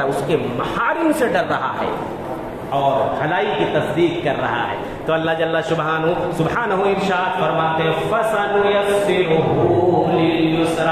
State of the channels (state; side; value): identical; both; correlation 1.00